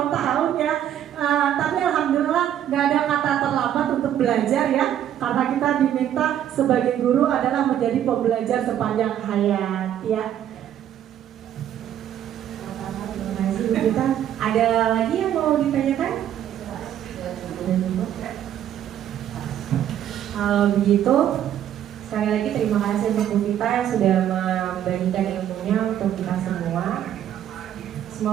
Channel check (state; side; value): quieter; left; 10.6 dB